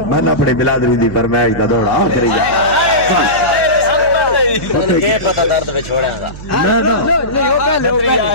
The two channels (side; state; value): right; noise; hum, 13 dB below the sound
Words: میں نے اپنی بلادری دی فرمائش دا دوڑا آخری جا یہ پتہ درد پہ چھوڑے گا